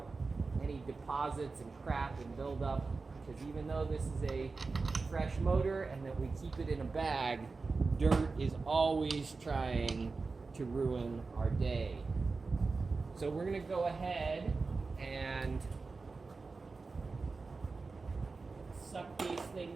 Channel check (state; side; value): quieter; left; 4.1 dB